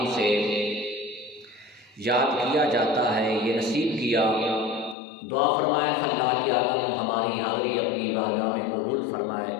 سے یاد کیا جاتا ہے، یہ نصیب کیا۔ دعا فرمائے اللہ کی عالم ہماری حاضری اپنی بارگاہ میں قبول فرمائے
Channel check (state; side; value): drops out; right; at 5.0 s